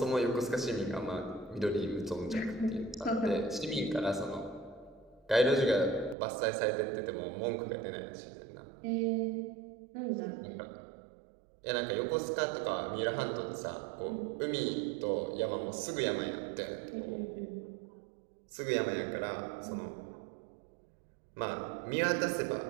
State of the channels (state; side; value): drops out; left; at 6.2 s